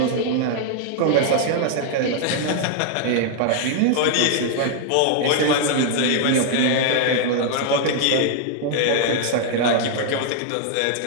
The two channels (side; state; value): both; different; correlation 0.00